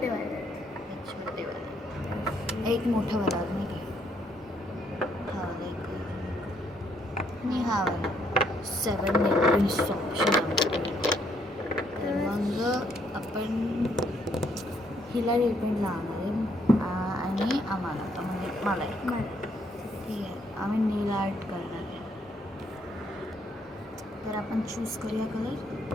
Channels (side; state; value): both; normal; correlation 0.70